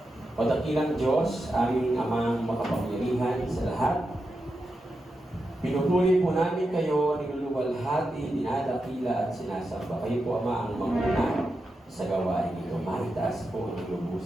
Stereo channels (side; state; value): both; normal; correlation 0.88